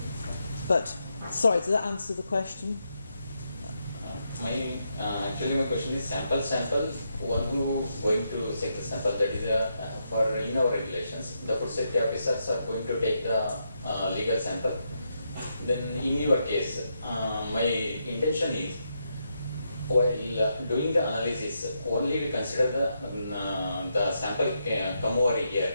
But, sorry, does that answer the question? Actually, my question is sample. One who going to take the sample, that is for in our regulations, the food safety officers are going to take the legal sample. Then in your case, my intention is while doing the analysis, only we consider the sample come over here.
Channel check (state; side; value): inverted; both; correlation -0.82